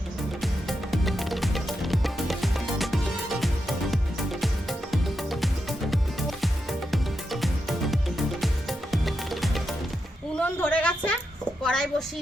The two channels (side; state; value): both; normal; correlation 0.86